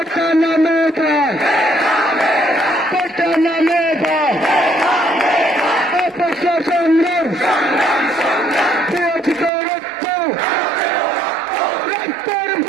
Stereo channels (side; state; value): left; drops out; at 9.5 s